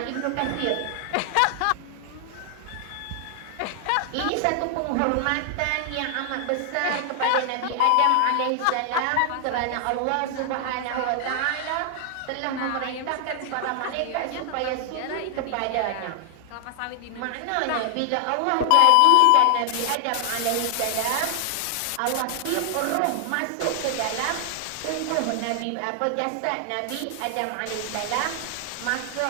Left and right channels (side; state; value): both; different; correlation 0.00